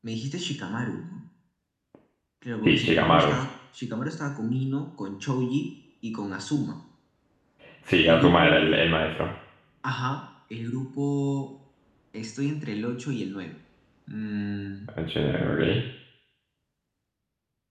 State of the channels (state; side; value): identical; both; correlation 1.00